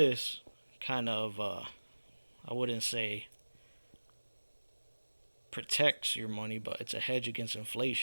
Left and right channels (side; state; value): both; inverted; correlation -1.00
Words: kind of, I wouldn't say protects your money, but it's a hedge against